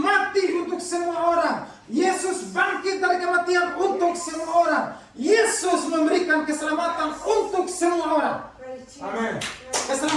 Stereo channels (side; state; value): both; identical; correlation 1.00